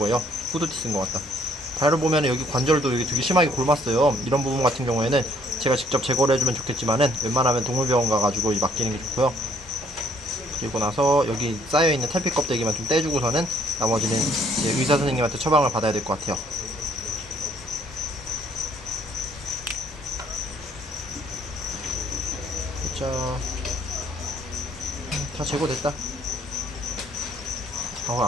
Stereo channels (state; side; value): normal; both; correlation 0.63